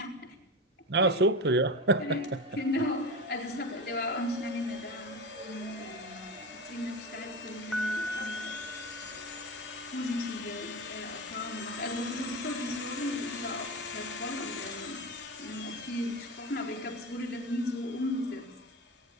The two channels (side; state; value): both; normal; correlation 0.23